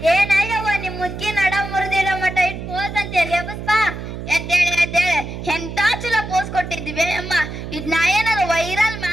ಏನ ಯವ್ವ ನಿಮ್ ಮುದ್ಕಿ ನಡ ಮುರಿದಿರೋ ಮಟ ಇಟ್ ಪೋಸ್ ಅಂತ ಹೇಳಿ ಎಬ್ಬಸ್ಪ. ಎದ್ದೇಳೆ ಎಂತ ಚಲೋ ಪೋಸ್ ಕೊಟ್ಟಿದ್ವಿ ಅಮ್ಮ. ಇದ್ ನಾ ಏನಾರ ವೈರಲ್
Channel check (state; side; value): noise; right; hum, 8 dB below the sound